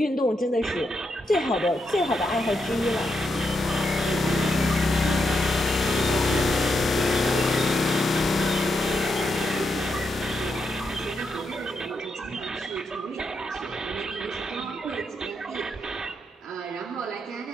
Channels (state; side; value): normal; both; correlation 0.82